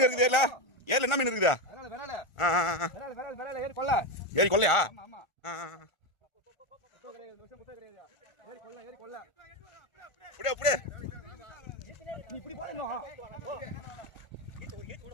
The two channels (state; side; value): late; right; 1.4 ms